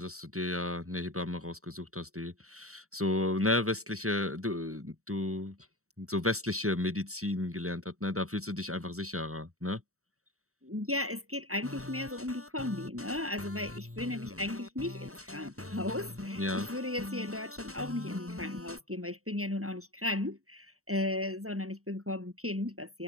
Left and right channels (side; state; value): left; late; 0.64 ms